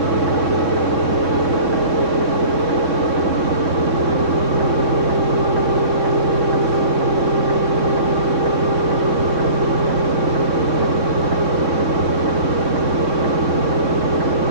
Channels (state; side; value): late; left; 3.6 ms